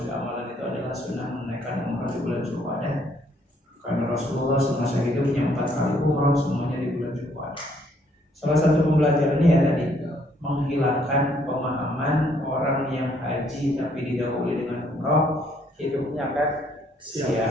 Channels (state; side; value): normal; both; correlation 0.67